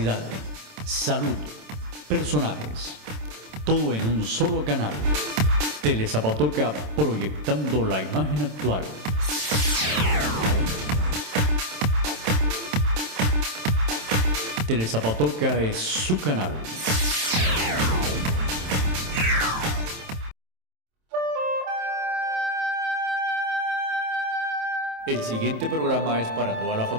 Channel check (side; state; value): left; late; 27 ms